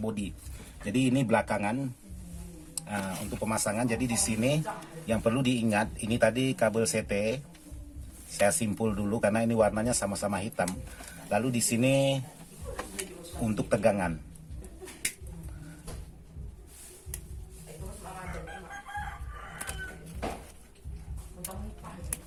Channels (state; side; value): identical; both; correlation 1.00